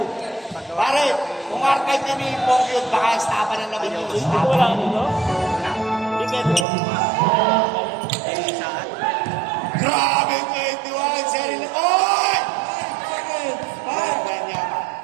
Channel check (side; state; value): left; drops out; at 6.7 s